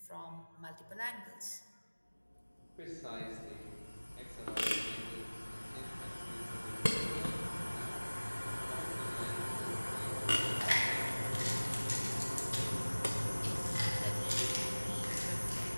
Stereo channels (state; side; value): inverted; both; correlation -1.00